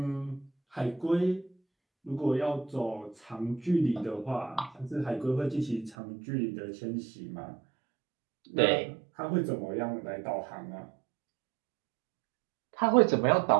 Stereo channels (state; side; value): drops out; left; at 6.0 s